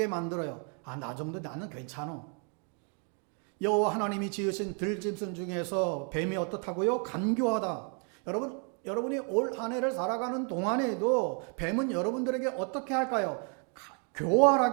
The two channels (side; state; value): left; quieter; 39.8 dB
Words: 만들어요. 나 정도 나는 괜찮아. 여호와 하나님이 지으신 들짐승 중에서 뱀이 어떻다고요? 간교하다. 여러분이 올 한 해를 살아가는 동안에도 뱀은 여러분들에게 어떻게 할까요?